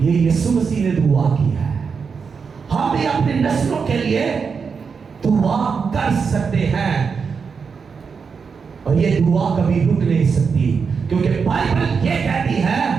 यीशु मसीह ने दुआ की है। हम भी अपनी नस्लों के लिए दुआ कर सकते हैं, और ये दुआ कभी रुक नहीं सकती, क्योंकि बाइबल ये कहती है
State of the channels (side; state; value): left; quieter; 5.7 dB